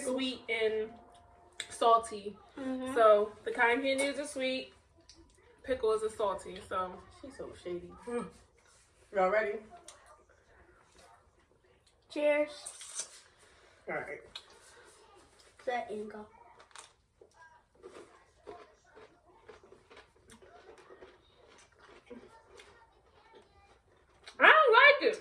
and salty. Mm-hmm. So the cotton candy is a sweet, pickle is a salty. So She's so shady. Y'all ready? Cheers. All right. Set and go. I don't like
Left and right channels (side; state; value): both; identical; correlation 1.00